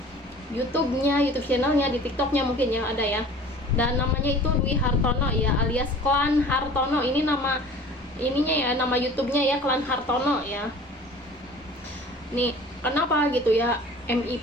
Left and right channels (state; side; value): normal; both; correlation 0.45